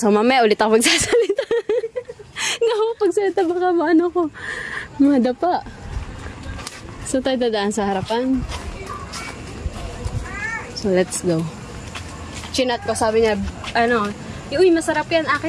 mamaya ulit ako magsasalita. nga ako pagsalita, baka maano ko. Madapa. So tayo dadaan sa harapan. So let's go. Chinat ko, sabi niya, ano, uy, masarap yan,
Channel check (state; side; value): identical; both; correlation 1.00